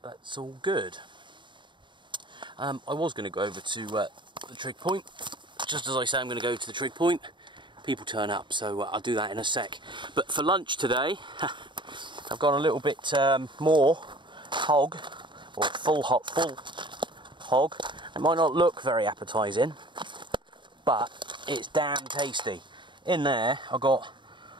that's all good. I was going to go over to the Trig point. Just as I say I'm going to go to the Trig point, people turn up, so I'll do that in a sec. But for lunch today, I've got a little bit more hog, or full hog. It might not look very appetising, but it's damn tasty. In there I've got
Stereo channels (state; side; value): late; left; 0.23 ms